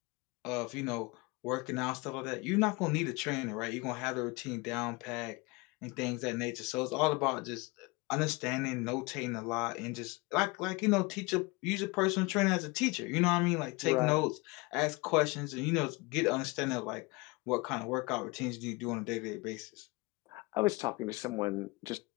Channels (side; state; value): right; quieter; 25.3 dB